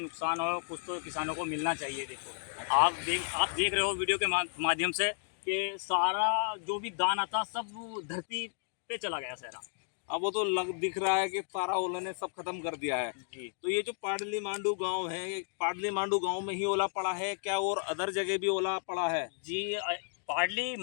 हो कुछ तो किसानों को मिलना चाहिए। देखो आप देख रहे हो वीडियो के माध्यम से कि सारा जो भी दाना था सब धरती पे चला गया सारा। अब वो तो दिख रहा है कि सारा ओला ने सब खत्म कर दिया है जी। तो ये जो पाडली मांडू गांव है, पाडली मांडू गांव में ही ओला पड़ा है क्या और अदर जगह भी ओला पड़ा है? जी, पाडली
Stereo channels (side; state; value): right; silent; digital silence